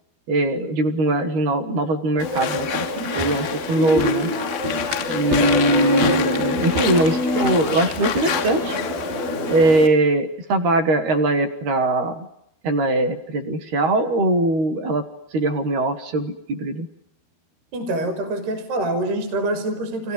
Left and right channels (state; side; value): late; left; 12 ms